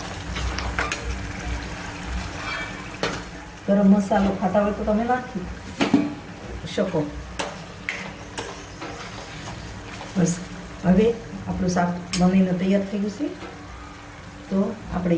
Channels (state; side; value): identical; both; correlation 1.00